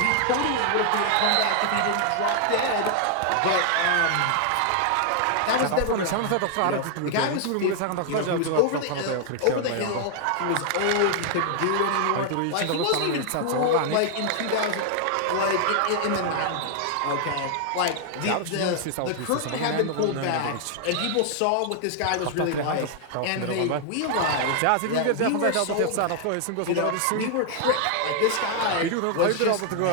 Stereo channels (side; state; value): both; different; correlation 0.00